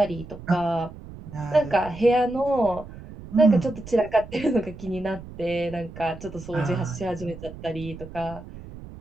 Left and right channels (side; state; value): right; noise; rumble, 15 dB below the sound